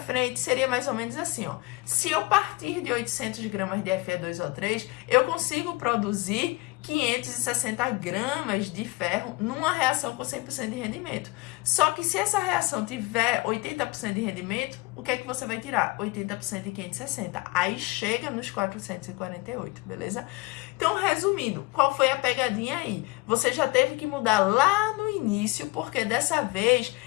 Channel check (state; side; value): quieter; right; 23.7 dB